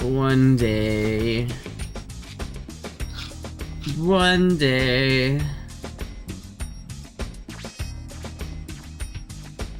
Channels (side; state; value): both; identical; correlation 1.00